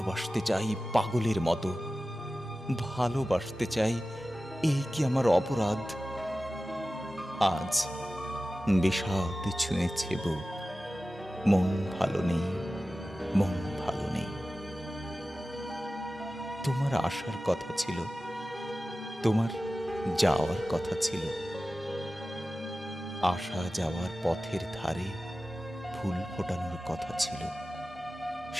চাই পাগলের মতো, ভালোবাসতে চাই। এই কি আমার অপরাধ? আজ বিষাদ ছুঁয়েছে বুক, মন ভালো নেই, মন ভালো নেই। তোমার আসার কথা ছিল, তোমার যাওয়ার কথা ছিল। আসা যাওয়ার পথের ধারে ফুল ফোটানোর কথা ছিল।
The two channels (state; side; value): normal; both; correlation 0.95